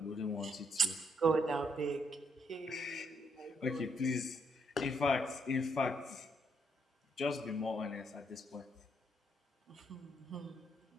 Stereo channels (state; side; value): normal; both; correlation 0.74